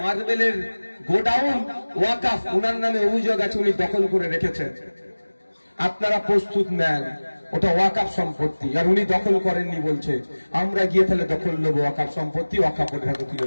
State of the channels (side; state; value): both; inverted; correlation -1.00